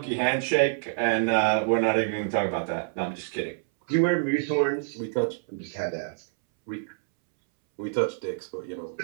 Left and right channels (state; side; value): silent; left; 60 dB below the other